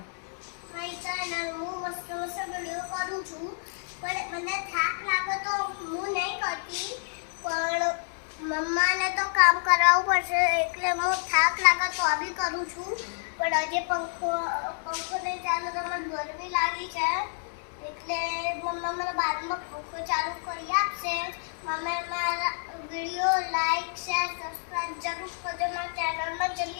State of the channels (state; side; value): silent; right; 59 dB below the other